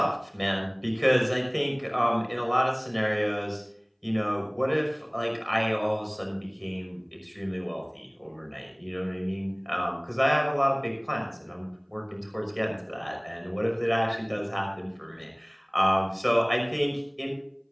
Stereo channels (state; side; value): identical; both; correlation 1.00